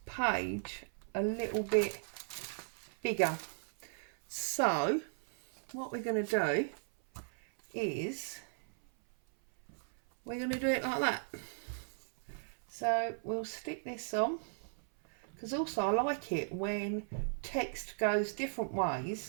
page a little bit bigger. So what we're going to do is we're going to do it like that. So we'll stick this on, because also I like it when text goes different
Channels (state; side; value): silent; left; 53 dB below the other